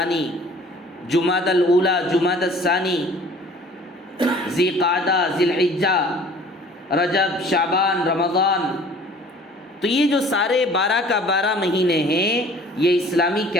جمادی الاولی، جمادی الثانی، ذی قعدہ، ذی الحجہ، رجب، شعبان، رمضان. تو یہ جو سارے 12 کا 12 مہینے ہیں یہ اسلامی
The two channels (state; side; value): normal; both; correlation 0.50